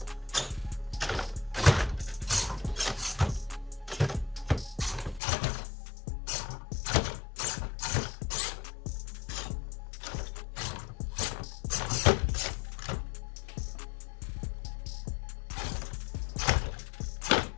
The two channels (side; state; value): right; drops out; at 5.2 s